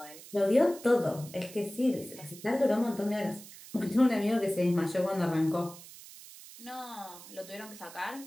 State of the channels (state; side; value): noise; right; hiss, 17 dB below the sound